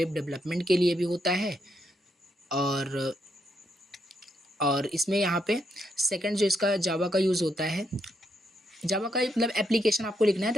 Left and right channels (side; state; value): both; normal; correlation 0.78